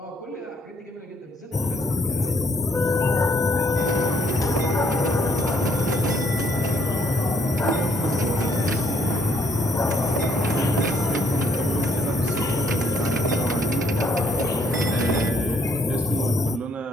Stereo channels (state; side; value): normal; both; correlation 0.67